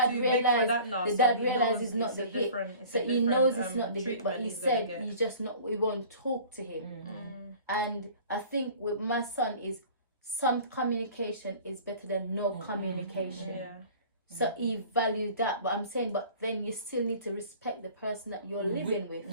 realized it's not the hit. So he knows it's not the hit, but he said he's just not, we won't talk to him. And I think with my son is some communication is better than no communication. So he valued that, but I'm saying, but then you still need to respect the person that you're living with.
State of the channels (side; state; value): both; inverted; correlation -0.45